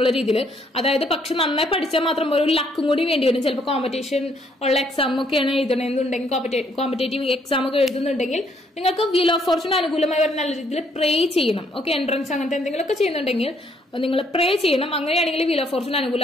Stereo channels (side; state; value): both; normal; correlation 0.69